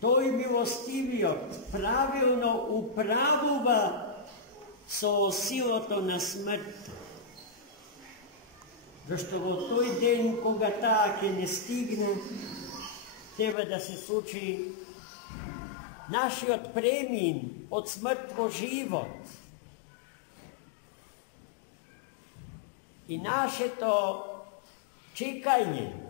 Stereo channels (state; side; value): drops out; right; at 13.6 s